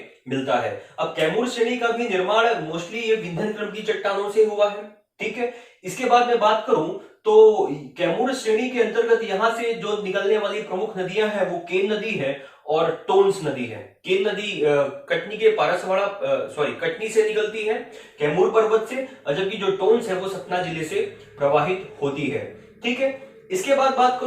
मिलता है। अब कैमूर श्रेणी का भी निर्माण मोस्टली ये विंध्य क्रम की चट्टानों से हुआ है। ठीक है, इसके बाद मैं बात करूं तो कैमूर श्रेणी के अंतर्गत यहां से जो निकलने वाली प्रमुख नदियां हैं वो केन नदी है और टोन्स नदी है। केन नदी कटनी के पारसवाड़ा कटनी से निकलती है, कैमूर पर्वत से, जबकि जो टोन्स है वो सतना जिले से प्रवाहित होती है। ठीक है, इसके बाद बात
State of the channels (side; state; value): both; identical; correlation 1.00